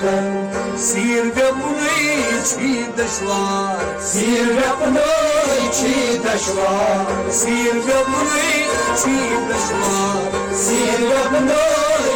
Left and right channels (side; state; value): both; identical; correlation 1.00